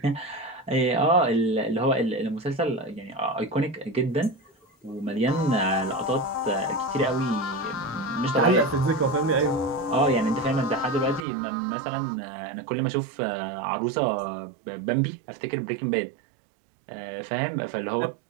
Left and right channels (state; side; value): drops out; left; at 11.2 s